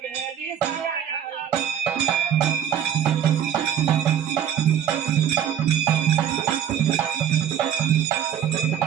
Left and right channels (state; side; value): quieter; left; 9.4 dB